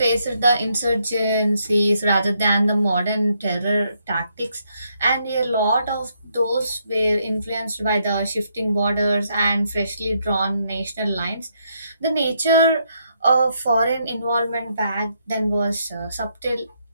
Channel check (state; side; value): inverted; both; correlation -0.76